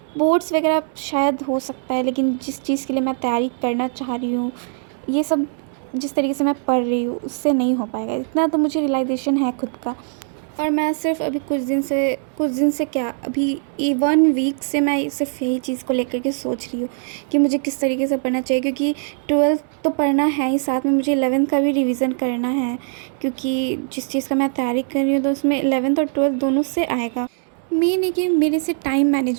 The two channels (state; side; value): silent; left; 65 dB below the other